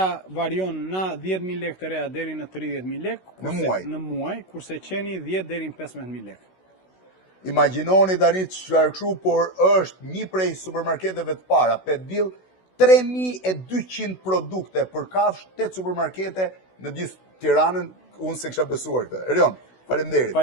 varion nga 10.000 lekë të reja deri në 30.000 lekë. Në muaj? Në muaj, kurse qeni 10 deri në 15.000 lekë. Imagjinoni tani çfarë kështu, por është një prej supermarketeve të para, Petbill, 3200 produkte për kafsh, 8 supermarkete në gjithë Tiranën, unë se kisha besuar këtë. Erion, faleminderit.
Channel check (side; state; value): right; late; 16 ms